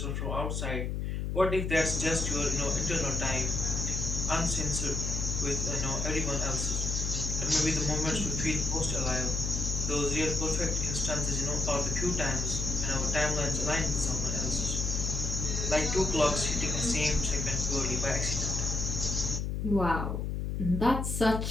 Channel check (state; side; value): noise; left; hum, 1 dB below the sound